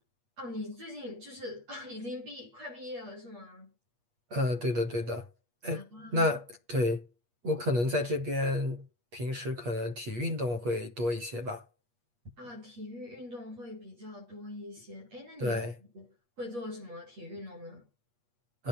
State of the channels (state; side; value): late; left; 8.4 ms